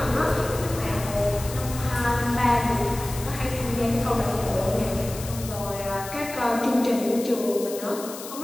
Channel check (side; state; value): left; noise; hiss, 12 dB below the sound